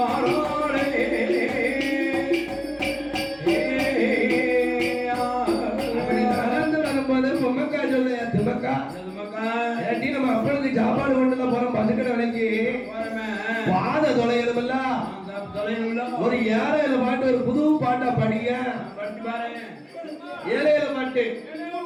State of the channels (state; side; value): identical; both; correlation 1.00